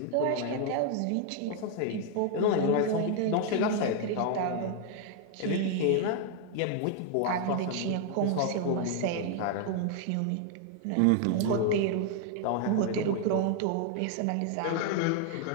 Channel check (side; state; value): both; different; correlation 0.00